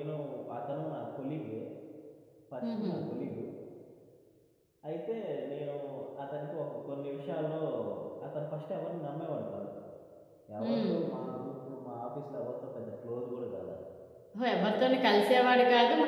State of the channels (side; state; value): both; identical; correlation 1.00